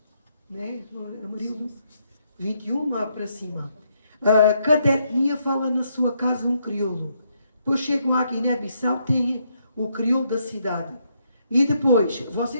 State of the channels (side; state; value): both; inverted; correlation -0.75